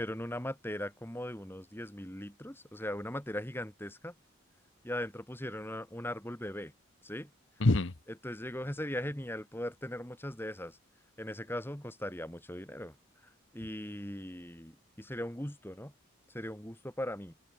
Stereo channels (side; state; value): both; normal; correlation 0.80